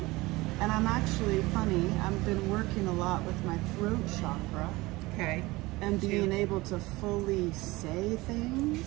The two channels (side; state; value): left; quieter; 21.0 dB